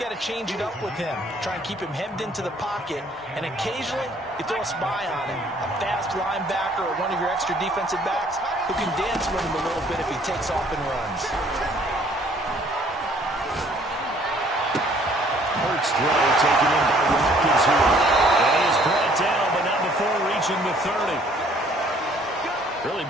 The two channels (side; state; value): both; normal; correlation 0.60